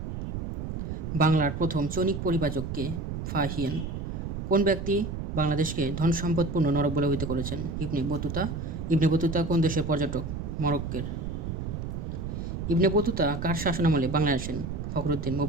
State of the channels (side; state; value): right; noise; rumble, 5 dB below the sound